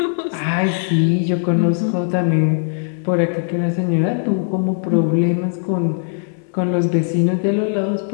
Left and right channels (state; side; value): silent; right; digital silence